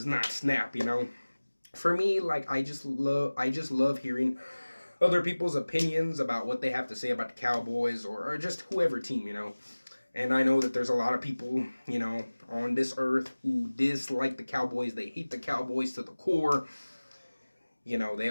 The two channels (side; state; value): both; inverted; correlation -1.00